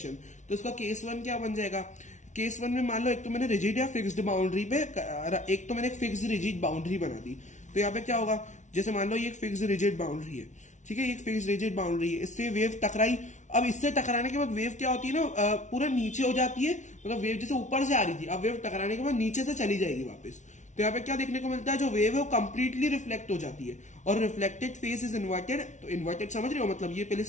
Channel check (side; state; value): right; late; 0.35 ms